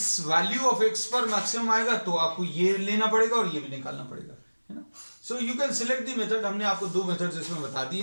वैल्यू ऑफ x पर मैक्सिमम आएगा तो आपको ये लेना पड़ेगा और ये भी निकालना पड़ेगा, है ना। So you can select the method. हमने आपको दो मेथड्स इसमें बता दिए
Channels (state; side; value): inverted; both; correlation -1.00